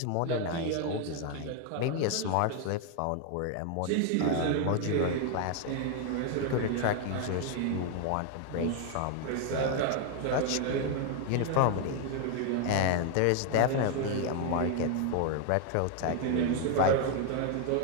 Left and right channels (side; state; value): both; different; correlation 0.00